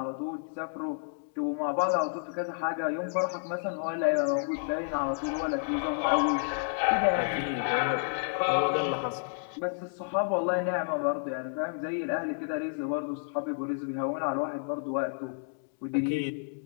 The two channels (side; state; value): right; silent; digital silence